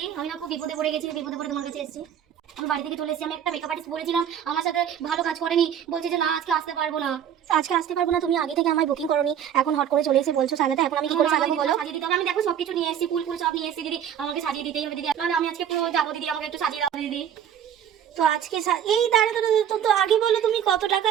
আমি না খুব বিপদে পড়ে গেছি, বিপদে পড়ে তোমার কাছে এসেছি। আমি বাড়ি থেকে চলে এসেছি, আমি একটা মেকআপ আর্টিস্ট বলেছিলাম, আমার সাথে ভালো কাজ করেনি, বলছে যে না আজকে আসতে পারবো না। আজকে আসতে পারবো না? তুমি আগে থেকে আমায় বুকিং করোনি, এখন হট করে চলে এসে বলছো সাজাতে, এখন আমি কি করে সাজাবো বলো? সাজিয়ে দিতে হবে, আমি দেখো সবকিছু নিয়ে এসেছি, ফুল ফুল সব নিয়ে এসেছি দিদি, আমাকে সাজিয়ে দিতেই হবে দিদি, নাহলে আমি আজকে পুরো যাবো দিদি, আমাকে একটু সাজিয়ে দাও দিদি। তো আজকে এই দাঁড়া দাঁড়া, তো আগে বলো তুমি কত টাকা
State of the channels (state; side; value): quieter; left; 9.3 dB